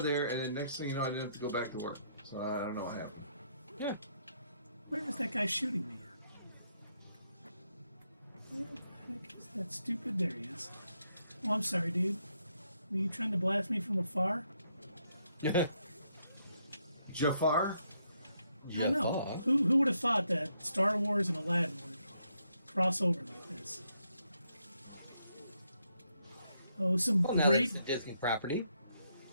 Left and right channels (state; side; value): inverted; both; correlation -0.76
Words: there, and then next thing you know, I didn't have to go back to work. So I don't know what happened. Yeah. Where is that guy shooting me? Where the heck is that stupid? There he is. Oh, I'm sorry, dude. Were you trying to blast me from afar? Jafar? I know. Who would have thought that Star Wars and Aladdin would cross over like this? Oh, some Well, now great... that it's a Disney property,